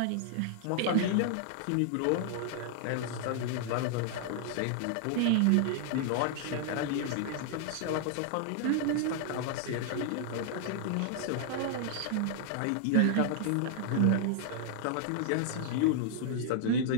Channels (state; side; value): different; both; correlation -0.01